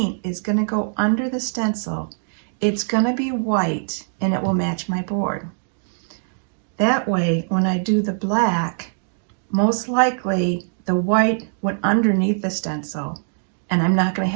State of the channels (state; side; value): silent; left; digital silence